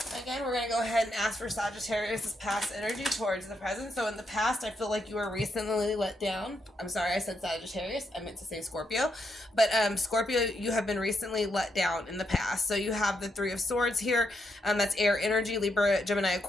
again, we're going to go ahead and ask for Sagittarius' past energy towards the present. So, in the past, I feel like you were recently let down. I'm sorry, I said Sagittarius. I meant to say Scorpio. But, Scorpio, you have been recently let down in the past. So, you have the Three of Swords here. That's air energy, Libra, Gemini,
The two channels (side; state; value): both; normal; correlation 0.80